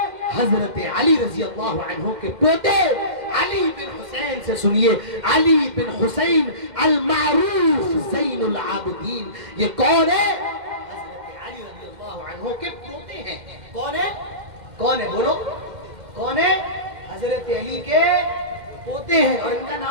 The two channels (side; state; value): left; late; 2.1 ms